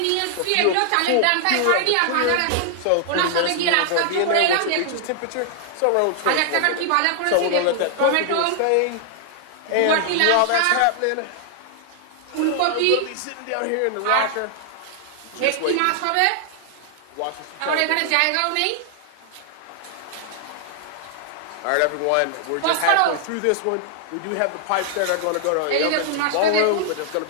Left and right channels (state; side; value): different; both; correlation 0.00